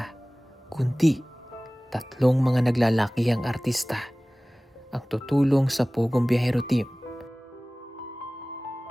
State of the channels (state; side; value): normal; both; correlation 0.98